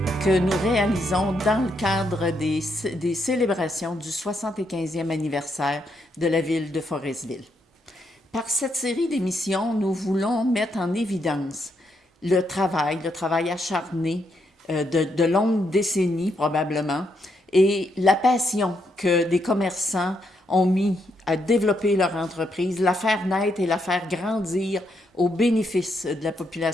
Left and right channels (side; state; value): both; normal; correlation 0.78